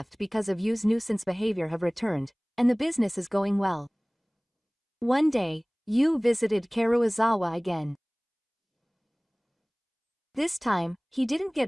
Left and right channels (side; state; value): both; identical; correlation 1.00